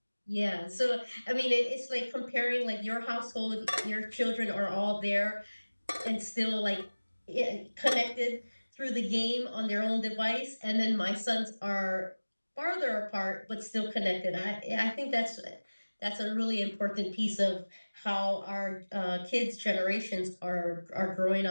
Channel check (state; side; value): inverted; both; correlation -1.00